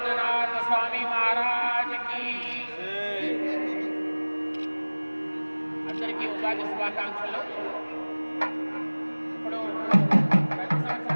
स्वामी महाराज की। అందరికీ ఉగాది శుభాకాంక్షలు. ఇప్పుడు ప్రతి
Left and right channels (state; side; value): inverted; both; correlation -1.00